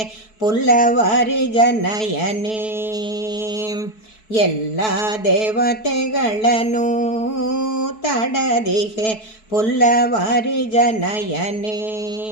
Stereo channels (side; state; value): right; late; 4.6 ms